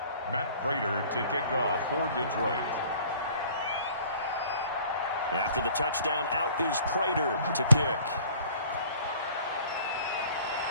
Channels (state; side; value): inverted; both; correlation -0.52